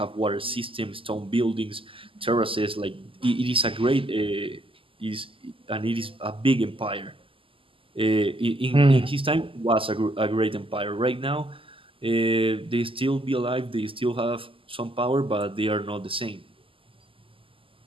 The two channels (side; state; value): left; late; 0.25 ms